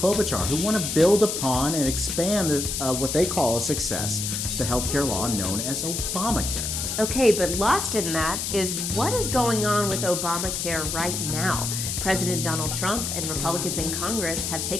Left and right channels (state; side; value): noise; left; hiss, 2 dB below the sound